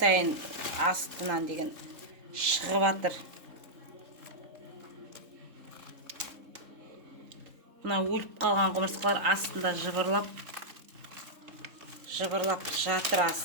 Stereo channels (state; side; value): late; left; 3.7 ms